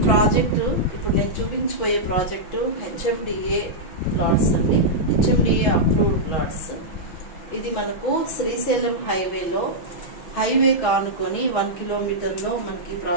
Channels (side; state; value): right; late; 6.2 ms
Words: ప్రాజెక్టు ఇప్పుడు నేను చూపించబోయే ప్రాజెక్టు హెచ్ఎండిఏ ప్లాట్స్ అండి. HMDA approved plots. ఇది మనకు శ్రీశైలం హైవే కానుకొని 1 కిలోమీటర్లో మనకి